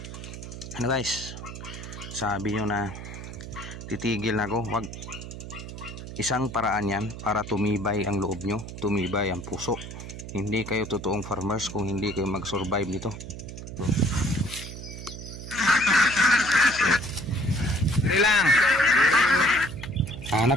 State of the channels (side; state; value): right; noise; hum, 10 dB below the sound